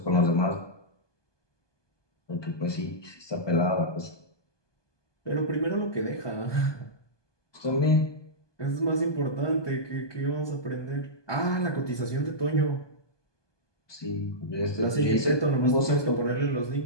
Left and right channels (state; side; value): late; right; 1.2 ms